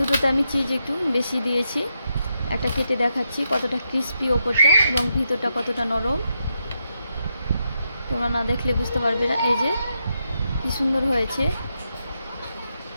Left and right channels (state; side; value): inverted; both; correlation -0.83